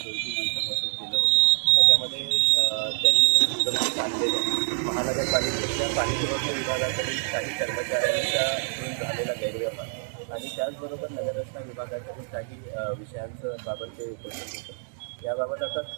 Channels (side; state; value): left; silent; digital silence